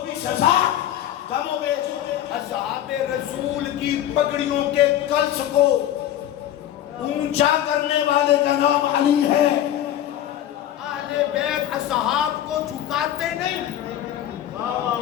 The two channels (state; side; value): quieter; right; 11.8 dB